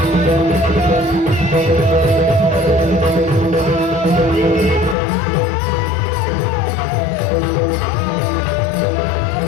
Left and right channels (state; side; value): drops out; right; at 5.0 s